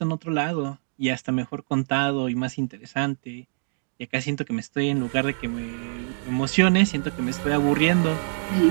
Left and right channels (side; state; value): left; silent; digital silence